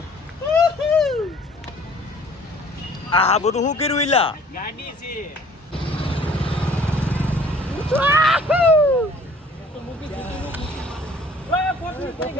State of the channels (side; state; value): both; normal; correlation 0.54